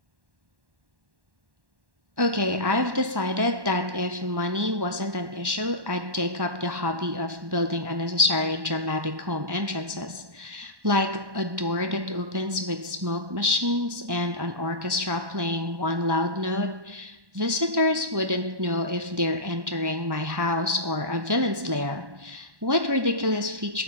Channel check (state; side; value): late; left; 1.1 ms